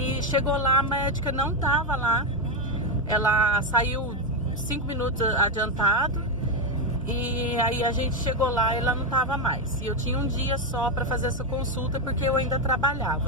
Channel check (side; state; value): both; normal; correlation 0.08